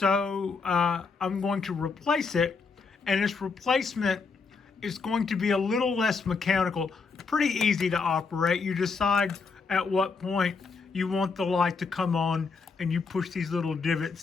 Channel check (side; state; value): right; quieter; 4.8 dB